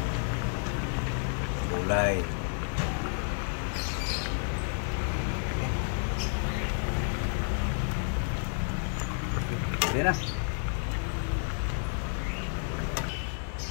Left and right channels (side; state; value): right; silent; 57 dB below the other